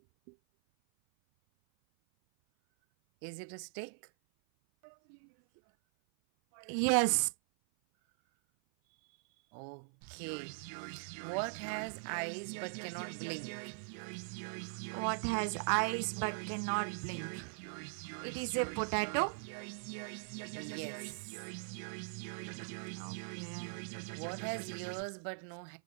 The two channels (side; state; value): left; silent; 51 dB below the other